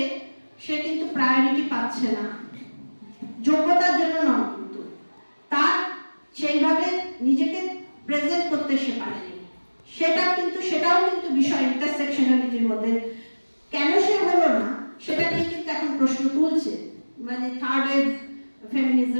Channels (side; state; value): both; inverted; correlation -1.00